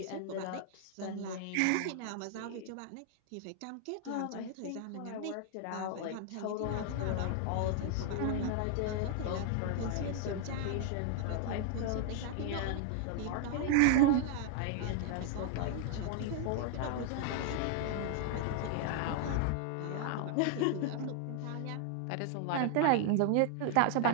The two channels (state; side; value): different; both; correlation 0.00